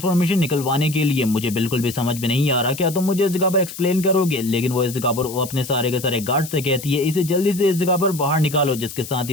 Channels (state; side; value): noise; left; hiss, 12 dB below the sound